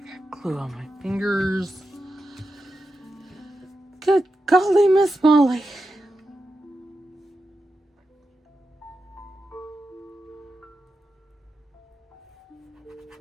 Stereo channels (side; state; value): both; normal; correlation 0.89